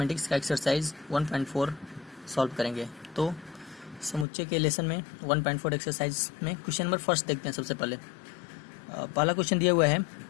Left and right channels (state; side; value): drops out; right; at 4.2 s